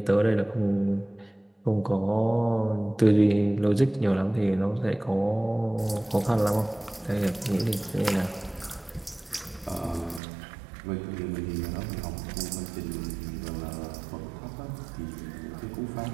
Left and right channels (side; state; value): left; drops out; at 10.2 s